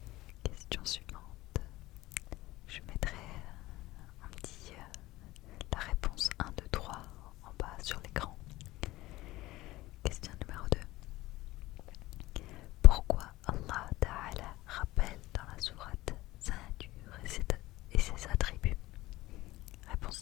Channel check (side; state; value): right; quieter; 18.1 dB